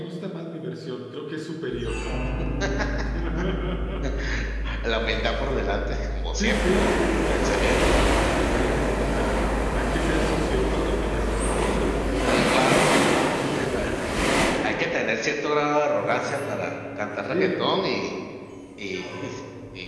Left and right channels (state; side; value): identical; both; correlation 1.00